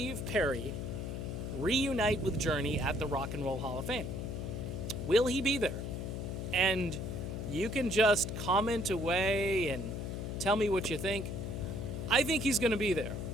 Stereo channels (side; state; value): left; noise; hum, 4 dB below the sound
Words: Perry reunite with Journey at the Rock and Roll Hall of Fame? Will he be there? And you can just comment away and tell me what you think. I think he's going to be there.